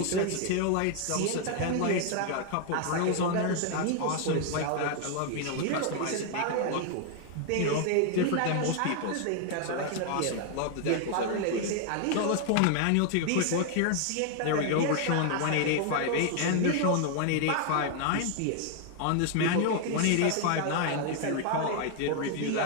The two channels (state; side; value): different; both; correlation 0.00